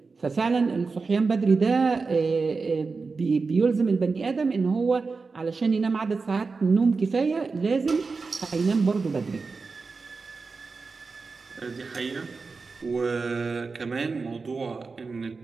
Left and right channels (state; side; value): quieter; left; 4.4 dB